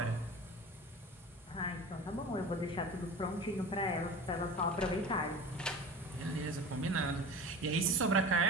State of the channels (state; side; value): normal; both; correlation 0.34